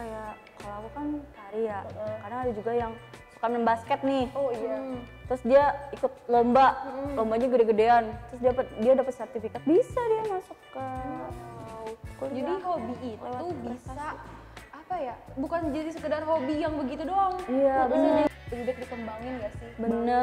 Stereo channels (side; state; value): both; identical; correlation 1.00